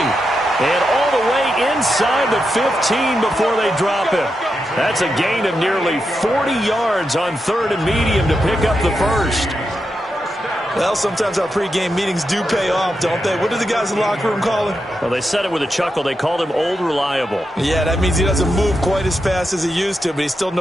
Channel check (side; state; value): both; normal; correlation 0.86